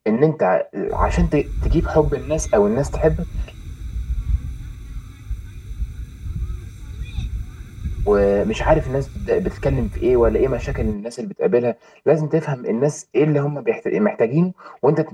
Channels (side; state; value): both; identical; correlation 1.00